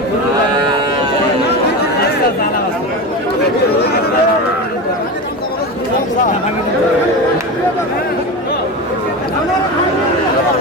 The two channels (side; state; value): both; normal; correlation 0.23